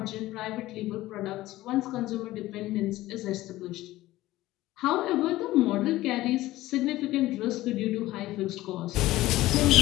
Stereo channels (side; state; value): right; quieter; 16.7 dB